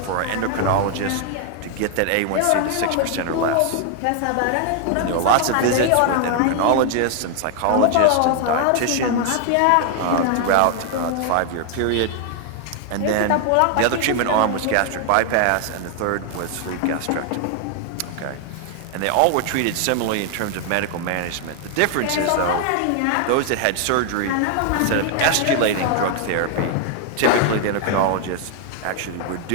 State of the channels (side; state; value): both; different; correlation 0.00